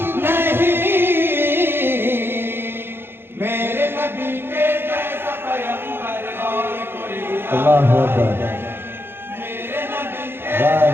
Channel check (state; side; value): late; left; 0.11 ms